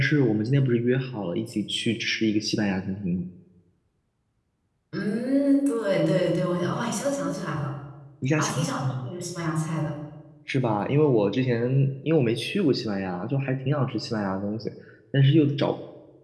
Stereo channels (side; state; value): both; identical; correlation 1.00